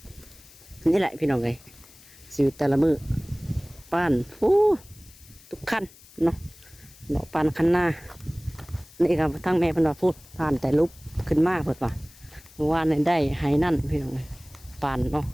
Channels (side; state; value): left; noise; hiss, 23 dB below the sound